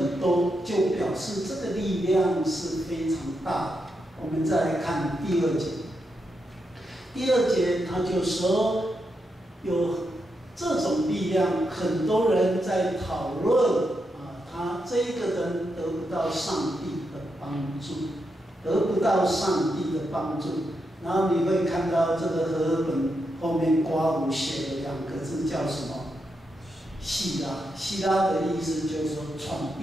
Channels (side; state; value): both; normal; correlation 0.84